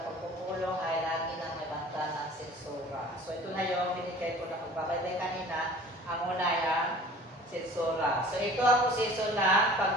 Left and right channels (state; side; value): normal; both; correlation 0.45